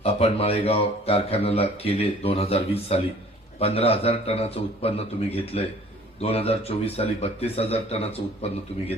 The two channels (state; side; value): normal; both; correlation 0.51